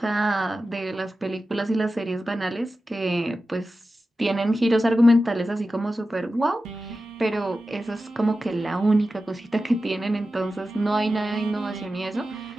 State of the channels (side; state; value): both; normal; correlation 0.93